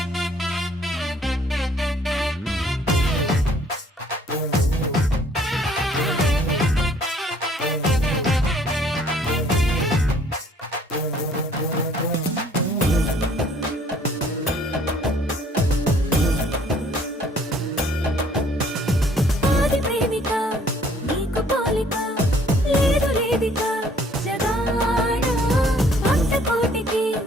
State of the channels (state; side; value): normal; both; correlation 0.59